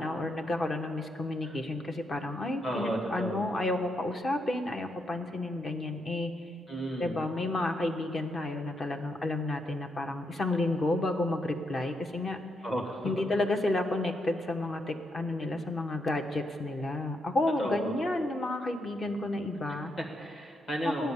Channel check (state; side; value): normal; both; correlation 0.80